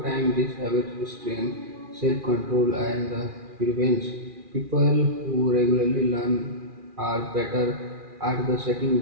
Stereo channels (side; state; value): left; late; 2.4 ms